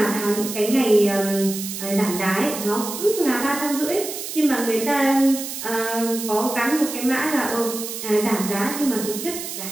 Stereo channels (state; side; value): noise; right; hiss, 7 dB below the sound